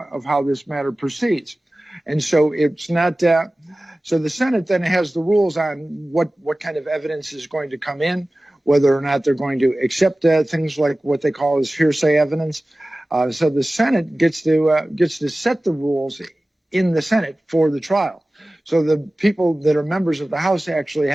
proceeds. And so it's not. So the Senate then has the rules on what kind of evidence is going to come in, whether or not they're going to accept things like what they call as hearsay evidence. So the Senate gets to set the rules in the Senate for the trial. So the people that are members of the House actually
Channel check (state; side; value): normal; both; correlation 0.97